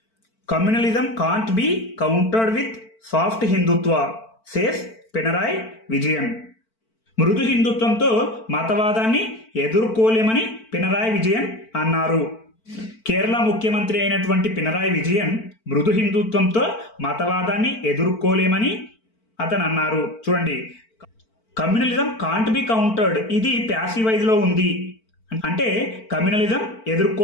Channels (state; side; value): late; right; 4.5 ms